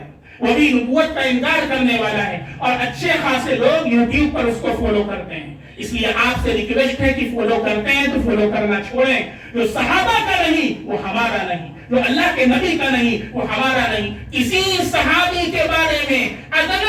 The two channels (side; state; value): both; identical; correlation 1.00